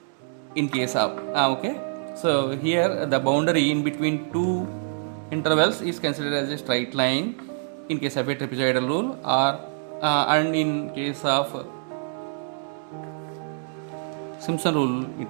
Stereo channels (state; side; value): silent; left; digital silence